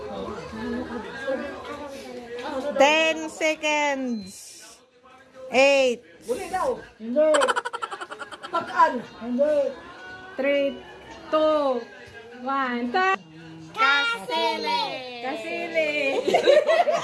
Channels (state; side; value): identical; both; correlation 1.00